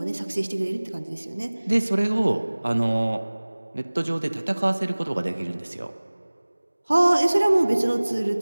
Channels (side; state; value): both; inverted; correlation -1.00